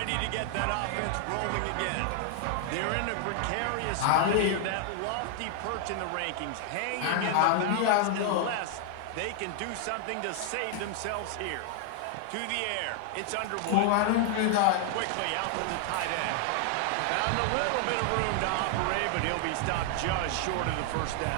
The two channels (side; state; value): both; different; correlation 0.00